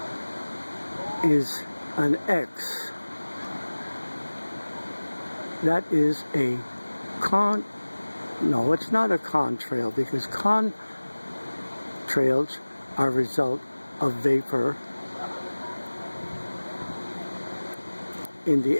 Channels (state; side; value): inverted; both; correlation -1.00